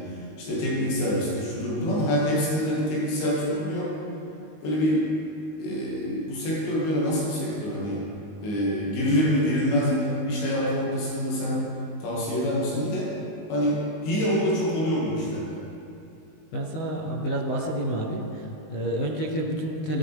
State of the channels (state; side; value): late; right; 19 ms